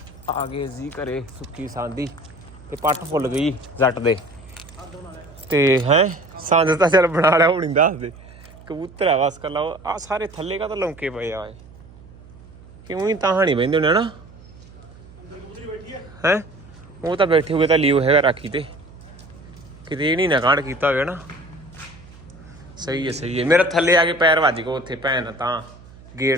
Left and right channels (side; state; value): right; noise; hum, 21 dB below the sound